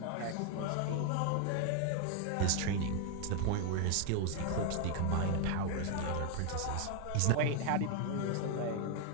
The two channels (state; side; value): different; both; correlation 0.01